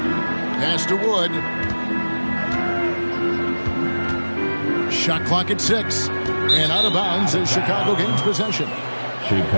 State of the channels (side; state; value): both; inverted; correlation -1.00